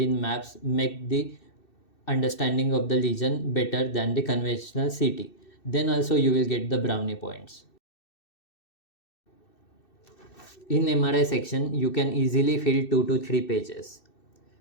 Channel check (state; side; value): late; right; 2.6 ms